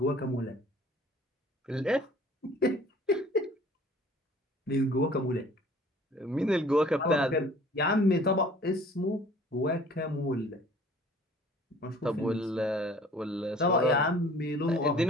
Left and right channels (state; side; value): normal; both; correlation 0.51